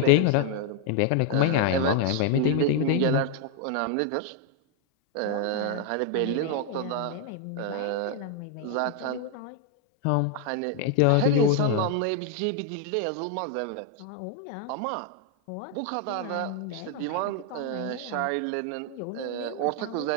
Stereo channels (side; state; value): both; different; correlation 0.00